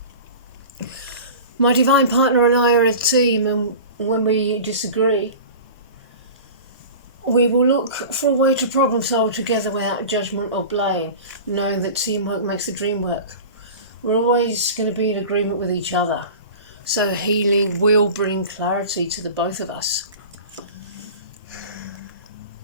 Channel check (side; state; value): both; inverted; correlation -0.36